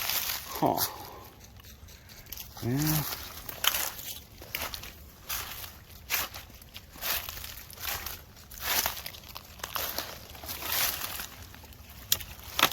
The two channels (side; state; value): both; identical; correlation 1.00